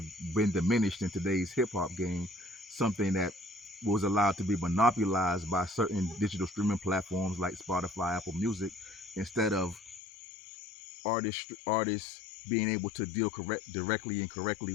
been diminished in today's hip-hop game, something that was allowed to be monopolized by certain digital streaming platforms like Spotify, Apple Music, instead of artists being able to deal directly and correctly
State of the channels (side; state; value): right; drops out; at 10.0 s